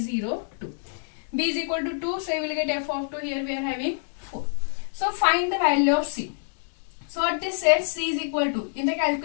b is equal to 2, so you will get f of 2, here we are having 4. So find the value of c. So what this says, c is equal to, in the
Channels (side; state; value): right; silent; digital silence